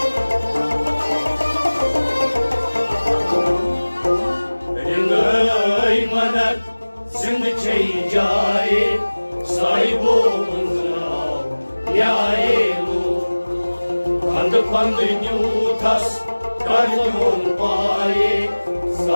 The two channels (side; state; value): both; inverted; correlation -1.00